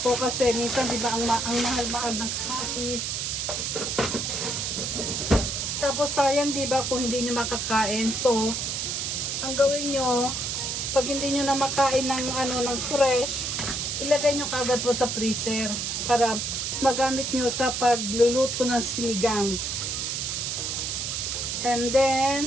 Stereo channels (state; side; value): noise; right; hiss, 2 dB below the sound